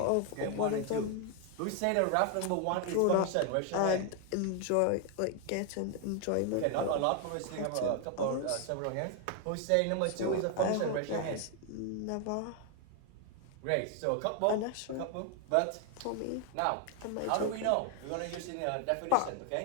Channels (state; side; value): different; both; correlation 0.00